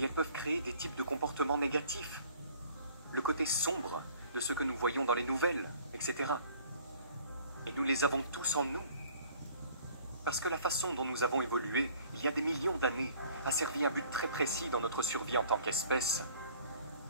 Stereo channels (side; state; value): both; inverted; correlation -0.53